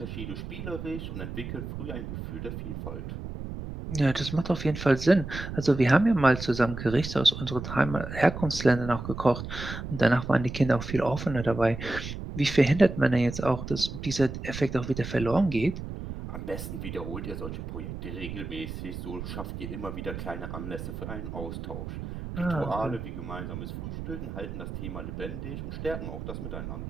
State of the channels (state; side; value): noise; right; rumble, 8 dB below the sound